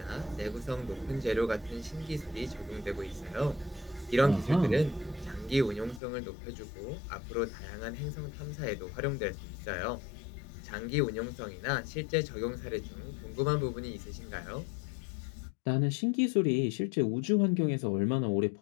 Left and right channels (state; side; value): drops out; right; at 6.0 s